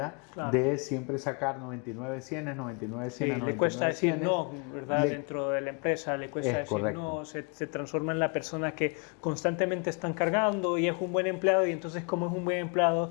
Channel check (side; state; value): right; quieter; 34.8 dB